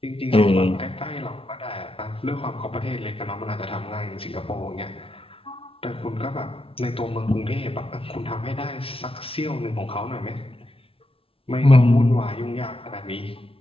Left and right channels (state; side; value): late; right; 0.26 ms